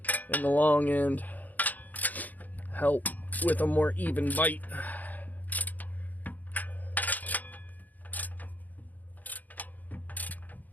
in the long end, help with a more even bite.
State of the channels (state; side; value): late; right; 0.081 ms